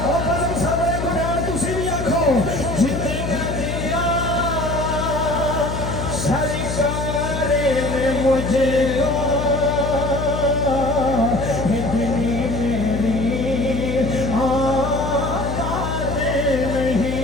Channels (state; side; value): noise; left; hum, 4 dB below the sound